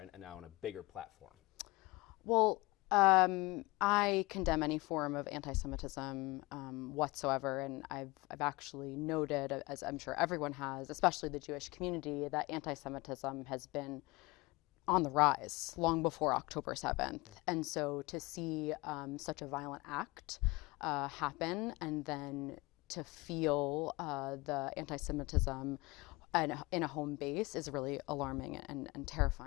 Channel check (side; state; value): right; quieter; 23.1 dB